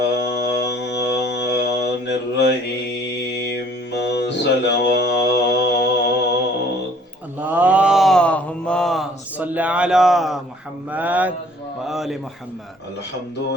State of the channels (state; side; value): normal; both; correlation 0.57